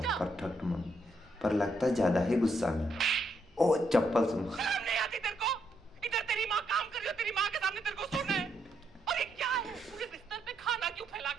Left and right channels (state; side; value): normal; both; correlation 0.77